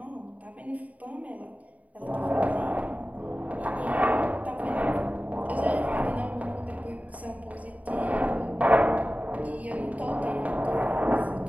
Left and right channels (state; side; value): late; left; 0.070 ms